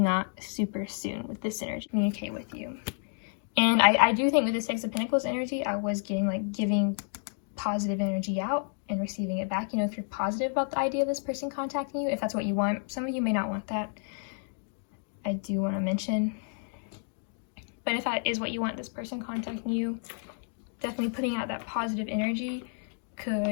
super soon with this energy, communicate with you. And I do think with the Six of Pentacles energy, I was getting like giving positive energy out and receiving it back. If you're positive about the idea of this person contacting you, if that's what you want. Some of you may not want that. I do want to mention But if that is what you want, this person contacting you, definitely putting out that positive energy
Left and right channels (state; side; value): silent; right; 58 dB below the other